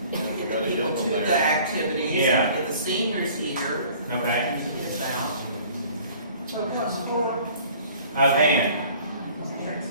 Get people to the activities, Yeah. and get the seniors here. Okay. Get it out. So what's for, Band.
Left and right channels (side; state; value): both; inverted; correlation -0.51